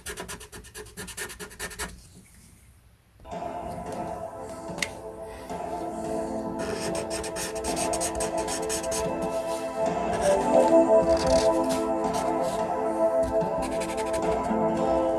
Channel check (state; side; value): identical; both; correlation 1.00